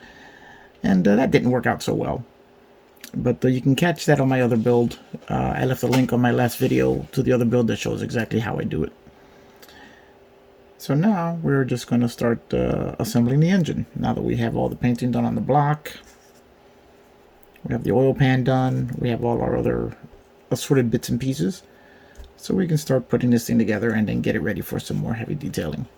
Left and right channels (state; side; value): identical; both; correlation 1.00